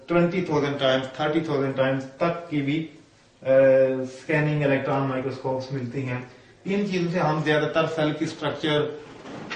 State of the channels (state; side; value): identical; both; correlation 1.00